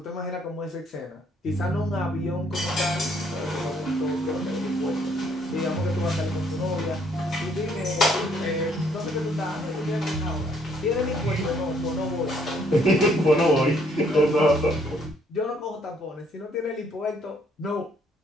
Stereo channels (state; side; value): normal; both; correlation 0.66